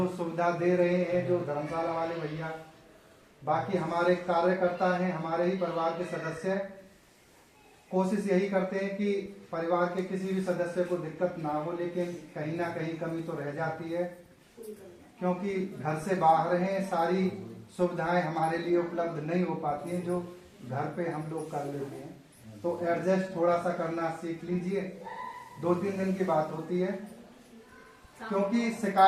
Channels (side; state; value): both; identical; correlation 1.00